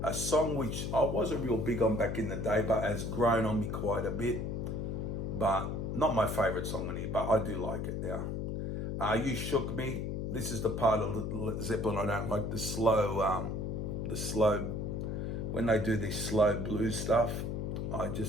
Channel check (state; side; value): noise; left; hum, 2 dB below the sound